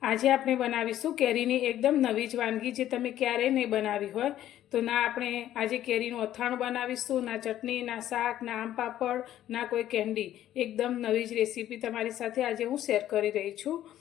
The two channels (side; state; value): right; quieter; 12.4 dB